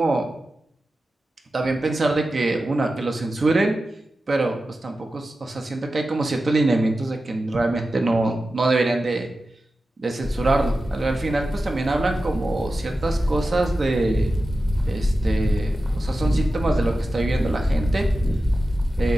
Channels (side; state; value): both; normal; correlation 0.93